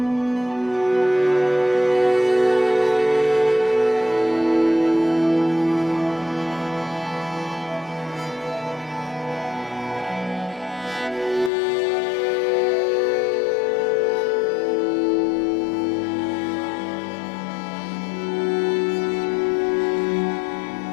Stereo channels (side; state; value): right; drops out; at 11.5 s